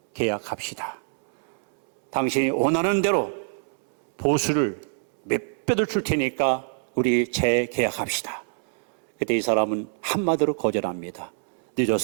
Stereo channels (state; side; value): silent; left; 61 dB below the other